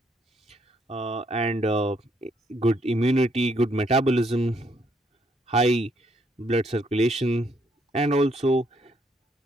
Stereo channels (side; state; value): both; normal; correlation 0.71